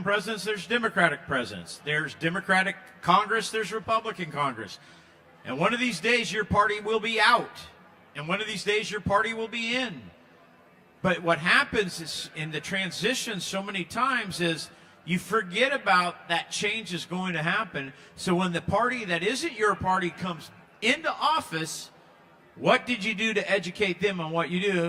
presidents, there's Democratic presidents. There's Democratic Congress, there's Republican Congress. And one of these days your party will be out, and one of these days your party will be in. But what happens is, in the transition so many times, is you forget about that change is going to happen. So when the party that isn't your party comes into office, what did you do to educate them on what you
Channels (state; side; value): identical; both; correlation 1.00